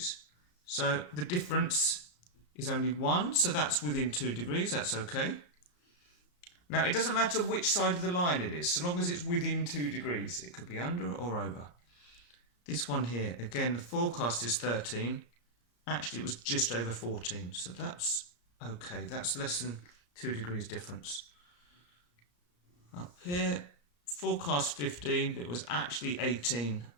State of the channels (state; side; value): late; right; 34 ms